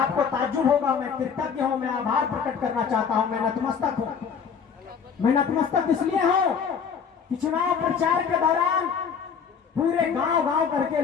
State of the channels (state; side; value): quieter; right; 6.6 dB